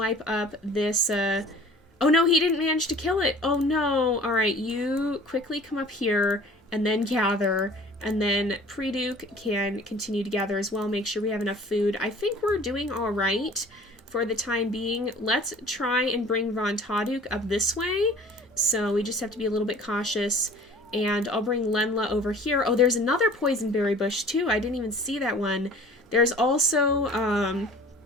up this, oh no, he didn't manage to kill it. Oh no. Alright, you quickly come up here and then gather. And then Pre-Duke can continue to gather as well. Make sure we have enough food. I think we're doing alright for the time being. Let's try and bring Von Taduk up this way. So we just have to be a little bit cautious. And I'll bring Lenla over here. Oh, there's another poison berry bush too. I didn't even see that one. There's also, oh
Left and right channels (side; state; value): both; normal; correlation 0.47